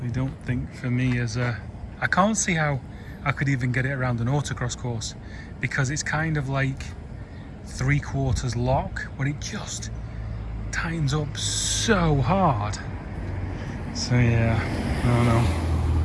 I don't think for me as a, I can't see how I could even get it around an autocross course, because it's kind of like 3/4 lock, but it just tightens up so hard. So yeah, I don't know.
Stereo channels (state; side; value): identical; both; correlation 1.00